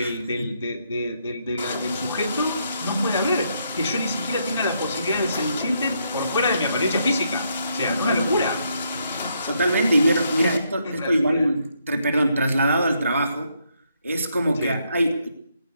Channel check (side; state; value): both; inverted; correlation -0.76